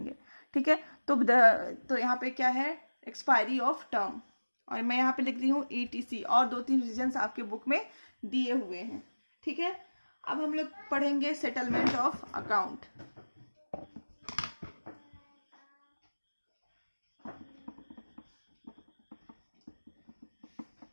ठीक है। तो यहाँ पे क्या है, एक्सपायरी ऑफ टर्म, और मैं यहाँ पे लिख रही हूँ ETC, और 2-3 रीजंस आपके बुक में दिए हुए हैं, ठीक है। अब हम लोग पढ़ेंगे settlement of account.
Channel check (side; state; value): both; inverted; correlation -1.00